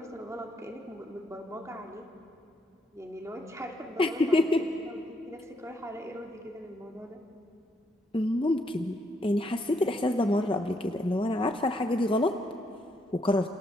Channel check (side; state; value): both; normal; correlation 0.74